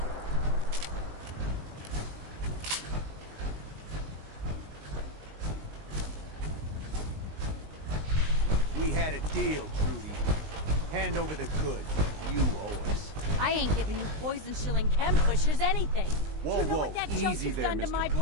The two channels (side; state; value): left; late; 19 ms